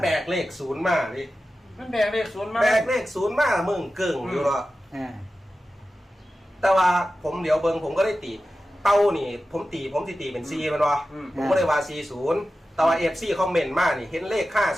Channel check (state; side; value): normal; both; correlation 0.93